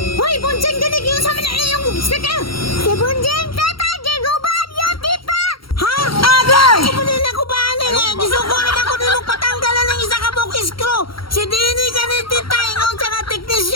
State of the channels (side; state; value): right; late; 0.74 ms